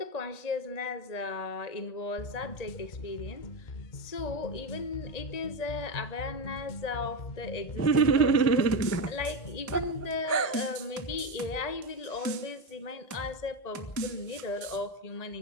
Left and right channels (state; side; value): late; right; 1.8 ms